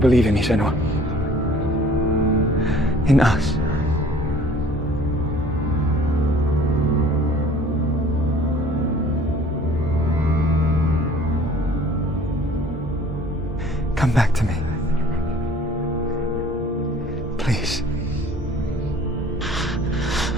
in me, Senua? In us? Come back to me. Please.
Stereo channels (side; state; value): both; normal; correlation 0.51